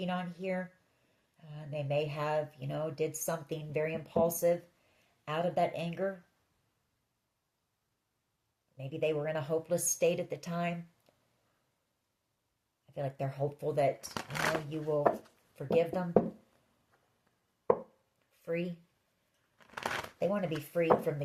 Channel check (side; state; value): both; identical; correlation 1.00